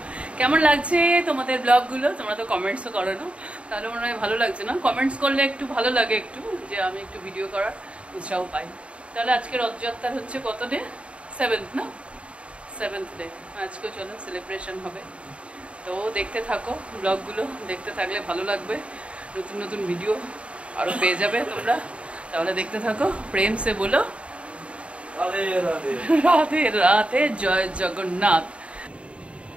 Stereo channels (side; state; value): left; late; 0.061 ms